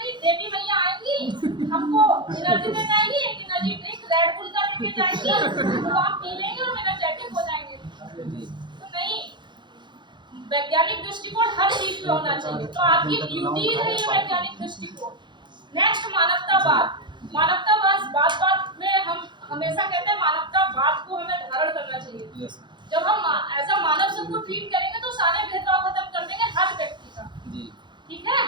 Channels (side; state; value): left; late; 0.22 ms